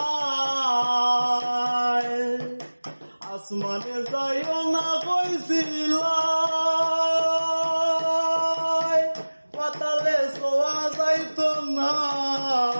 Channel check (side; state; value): both; inverted; correlation -1.00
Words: আসমানে যাইও না কইছিলাই, পাতালে ছোঁয়া যাইতো না।